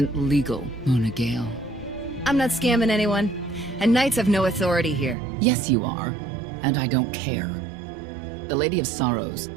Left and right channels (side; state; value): left; drops out; at 5.2 s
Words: legal, Mona Gale. I'm not scamming anyone. And Knights have no authority here. Yes, you are. And I don't care. The Lady of Sorrows.